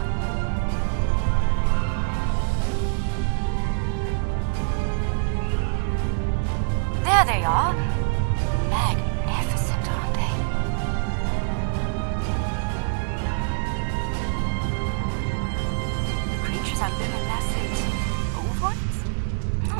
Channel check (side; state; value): left; silent; digital silence